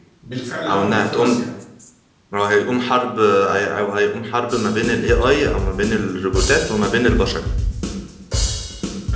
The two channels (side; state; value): both; identical; correlation 1.00